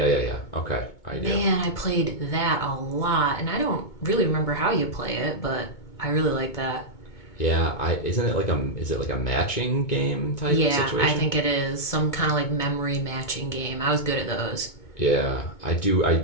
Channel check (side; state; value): right; late; 2.2 ms